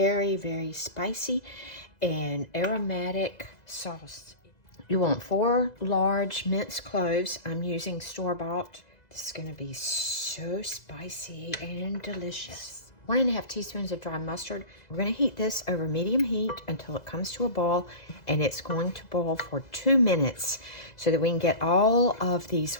very spicy and aromatic sauce. You want 4 large minced cloves. I'm using store-bought. This is going to be so spicy and delicious. 1.5 teaspoons of dry mustard. We're going to heat this over medium heat until it comes to a boil, and it's going to boil for 2 minutes so that we can get all of these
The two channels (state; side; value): late; right; 1.9 ms